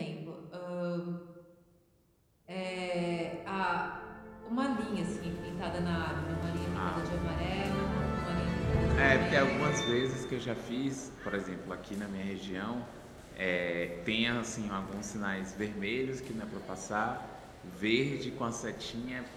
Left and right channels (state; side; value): identical; both; correlation 1.00